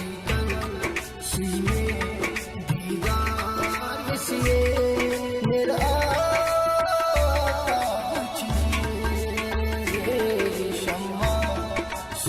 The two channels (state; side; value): identical; both; correlation 1.00